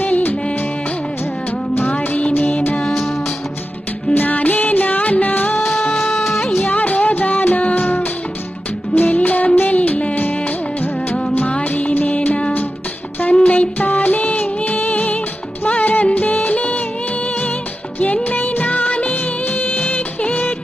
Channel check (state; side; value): normal; both; correlation 0.92